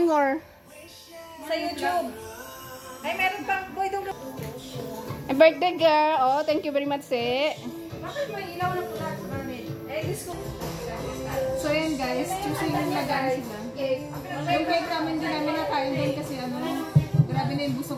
Sa YouTube. Ay, meron pang boy doon. Birthday girl. Oh, thank you very much, eh. Bakit may ilaw na pula sa garment? Eh, disco. So, yan guys. Choosing na guys. Yung cake namin din namin nakain din kasi ano, grabe na yung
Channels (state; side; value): identical; both; correlation 1.00